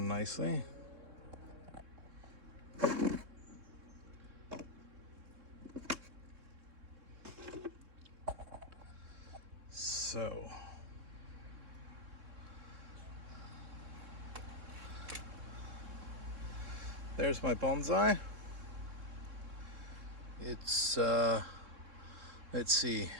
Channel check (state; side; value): late; left; 3.6 ms